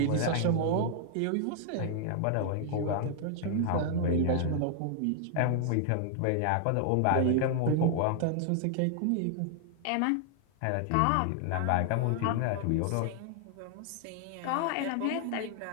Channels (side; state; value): both; different; correlation 0.00